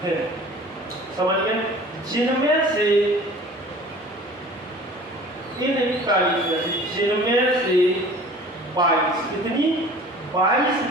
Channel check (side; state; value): both; normal; correlation 0.45